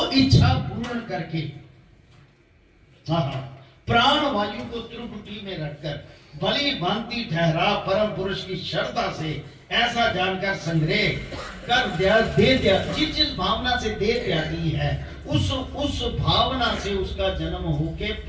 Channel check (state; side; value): identical; both; correlation 1.00